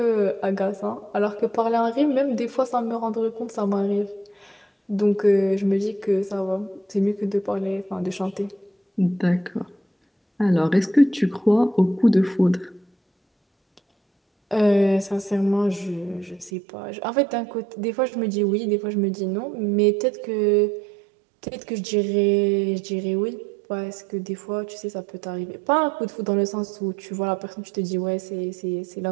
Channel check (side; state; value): left; drops out; at 16.5 s